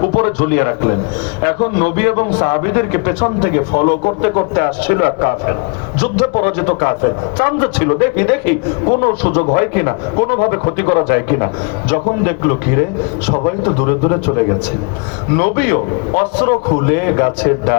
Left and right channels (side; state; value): right; quieter; 33.9 dB